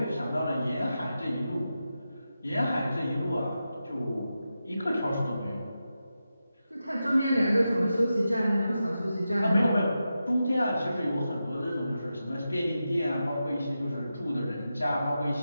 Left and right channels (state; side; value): inverted; both; correlation -0.90